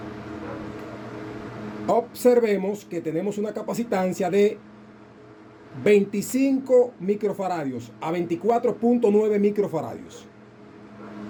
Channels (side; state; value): both; identical; correlation 1.00